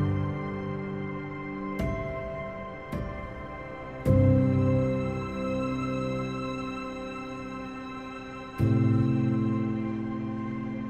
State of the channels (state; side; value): identical; both; correlation 1.00